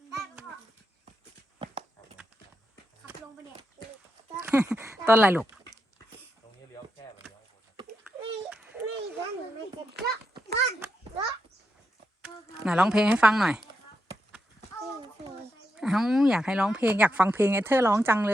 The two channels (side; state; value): both; normal; correlation 0.85